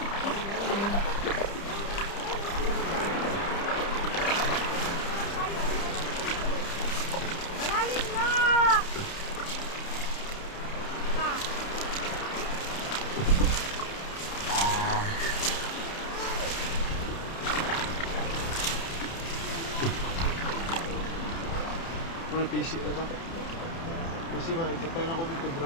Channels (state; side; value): late; right; 30 ms